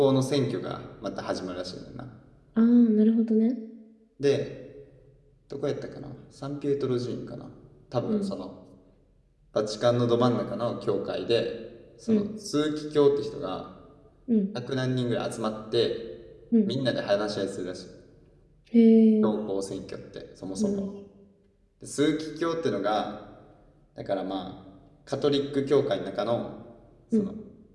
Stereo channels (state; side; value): identical; both; correlation 1.00